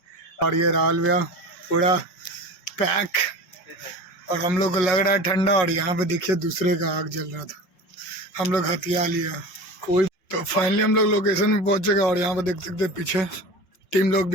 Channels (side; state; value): right; late; 5.5 ms